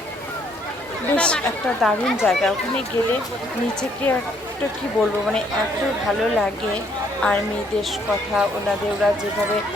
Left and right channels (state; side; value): normal; both; correlation 0.67